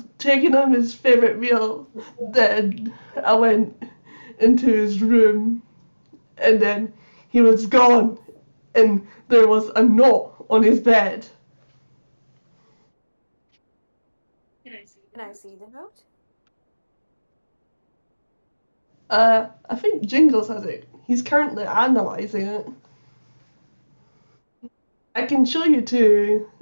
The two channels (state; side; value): inverted; both; correlation -1.00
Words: taking him his favourite meal. Then I went into his room and then he was gone and there was a note on his bed. Can I see the note? I think Jingles has it. He's currently analysing it. I can show you to